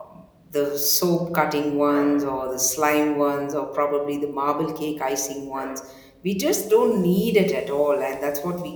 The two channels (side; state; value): both; identical; correlation 1.00